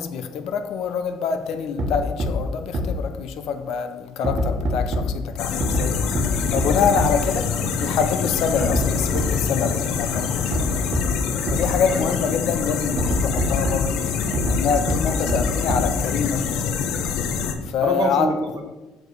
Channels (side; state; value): right; quieter; 4.4 dB